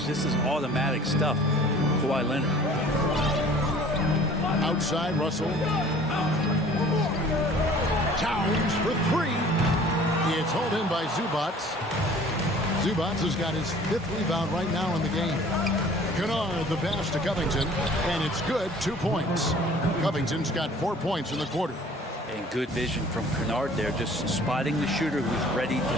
This is automatic stuff. Kawhi Leonard. Outside, Russell. Towns for 3. It's hauled in by Zubats. Zubats has got his 5th rebound right now in the game. Kennard the pass to Covington, and it's good. 2 points. Covington's got 4 points in the quarter. And good vision from Kennard there, just spotting the shooter who's ready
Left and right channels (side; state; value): both; normal; correlation 0.50